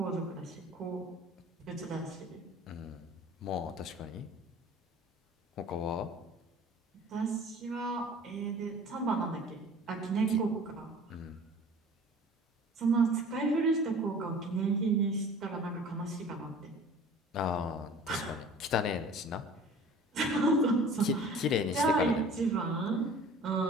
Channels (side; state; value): both; normal; correlation 0.45